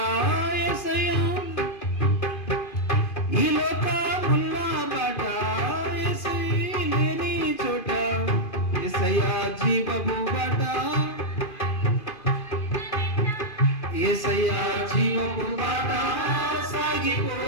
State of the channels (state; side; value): late; right; 2.5 ms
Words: యేసయ్యా, ఈ లోకముల్లా బాట యేసయ్య లేని చోట యేసయ్యా జీవపు బాట, యేసయ్యా జీవపు బాట సాగిపో